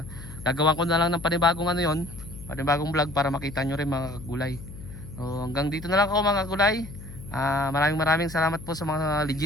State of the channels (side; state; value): left; noise; hum, 14 dB below the sound